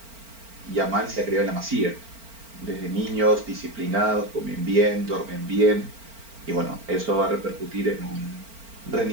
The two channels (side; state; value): left; late; 4.4 ms